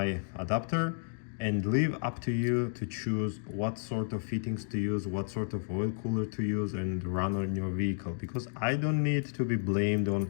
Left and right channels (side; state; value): right; silent; digital silence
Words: adapter, and leave up to you to choose what sort of fittings to use, what sort of oil cooler to use and run on your vehicle, because I don't need to be blamed